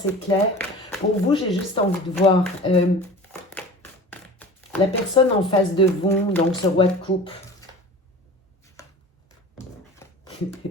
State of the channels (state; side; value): normal; both; correlation 0.38